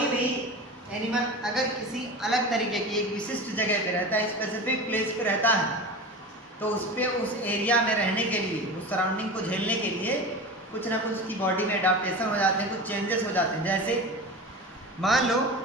भी एनिमल अगर किसी अलग तरीके की एक विशिष्ट जगह पे रहता है, स्पेसिफिक प्लेस पे रहता है, तो उस पर उस एरिया में रहने के लिए, उस सराउंडिंग को झेलने के लिए कुछ ना कुछ उसकी बॉडी में एडाप्टेशन हो जाते हैं, कुछ चेंजेस हो जाते हैं। जैसे मान लो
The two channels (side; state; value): both; normal; correlation 0.30